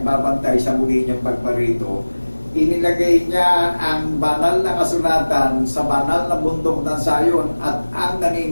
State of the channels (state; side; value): inverted; both; correlation -1.00